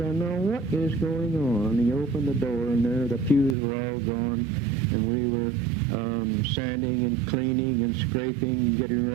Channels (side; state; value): left; drops out; at 3.6 s